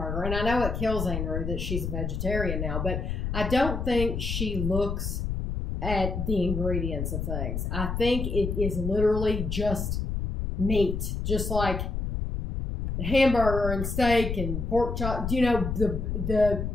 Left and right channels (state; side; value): noise; left; rumble, 3 dB below the sound